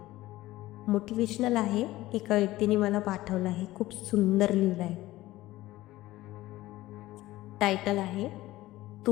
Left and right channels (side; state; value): right; quieter; 17.0 dB